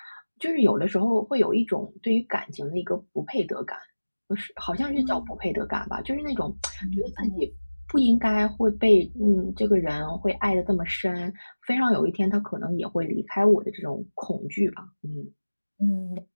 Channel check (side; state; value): both; inverted; correlation -1.00